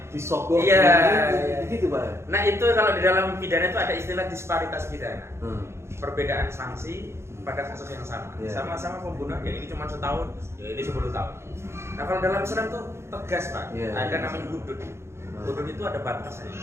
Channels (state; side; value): late; left; 0.13 ms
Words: disogok, gitu Pak. Nah itu kalau di dalam pidana itu ada istilah disparitas pidana, perbedaan sanksi pada kasus yang sama, sama-sama pembunuhan, ya ini cuma 1 tahun, ya ini 10 tahun. Nah kalau dalam Islam tuh tegas Pak, ada namanya hudud. Hudud itu ada batasnya,